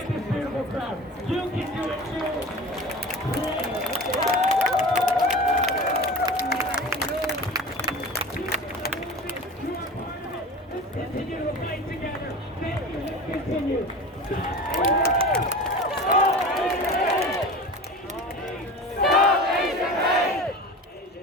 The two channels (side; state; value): both; normal; correlation 0.33